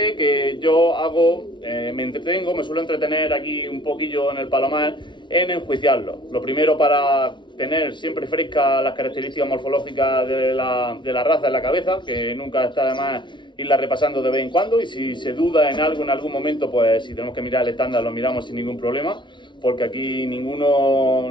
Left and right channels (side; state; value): right; late; 0.23 ms